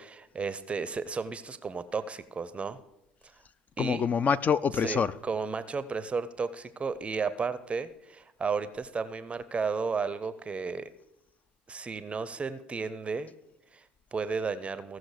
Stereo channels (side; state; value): both; normal; correlation 0.71